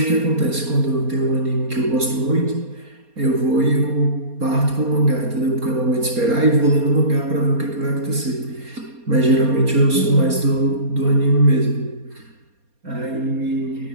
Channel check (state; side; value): late; left; 4.2 ms